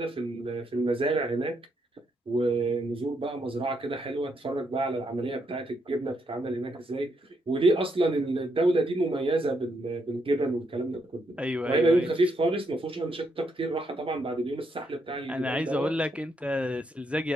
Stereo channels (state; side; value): normal; both; correlation 0.77